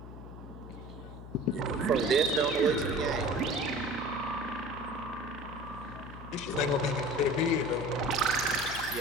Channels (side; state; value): left; noise; hum, 13 dB below the sound